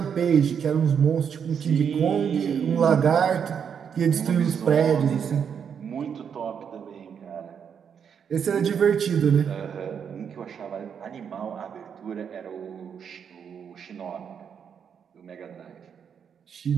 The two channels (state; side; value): quieter; left; 7.4 dB